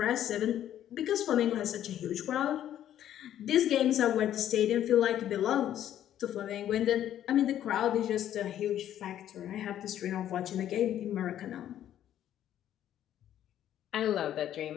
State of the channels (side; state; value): right; quieter; 11.3 dB